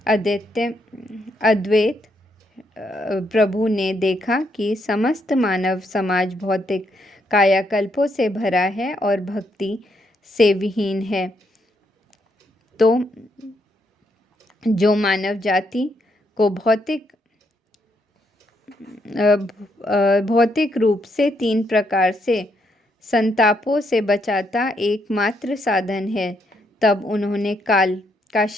अद्वैत प्रभु ने देखा कि समस्त मानव समाज भौतिक कायाकल्पों से भरा है और भक्ति से विहीन है, तो जो मानव जाति को भौतिक रूप से तीन प्रकार से संतापों से बचाता एकमात्र साधन है, तब उन्होंने काल का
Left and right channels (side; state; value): both; normal; correlation 0.76